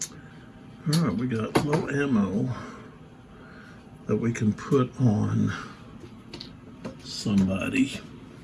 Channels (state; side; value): identical; both; correlation 1.00